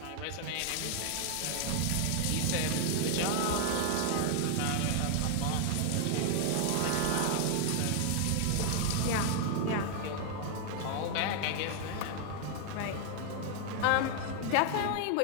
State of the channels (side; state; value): both; different; correlation 0.00